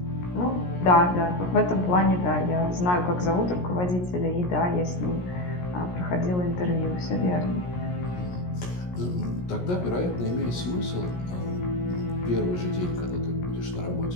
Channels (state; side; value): late; right; 17 ms